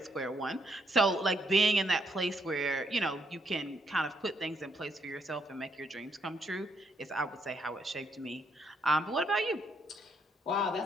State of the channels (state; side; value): normal; both; correlation 0.74